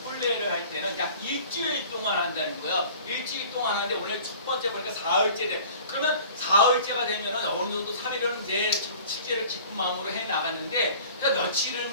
혼례를 할 때는 약 일주일 동안 한다는 거예요. 일주일 동안 하는데 오늘 첫 번째 보니까 사흘째 돼. 그러면 사흘째가 되면 어느 정도 3일은 이제 축제를 기쁜 마음으로 해 나갔는데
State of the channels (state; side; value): inverted; both; correlation -0.45